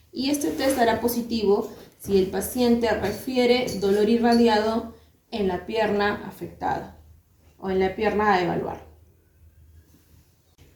y este test dará positivo si el paciente refiere dolor irradiado en la pierna afectada o en la pierna a evaluar.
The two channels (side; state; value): both; identical; correlation 1.00